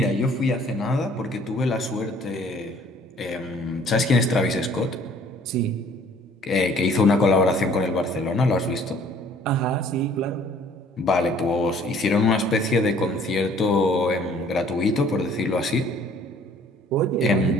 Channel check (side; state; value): both; normal; correlation 0.56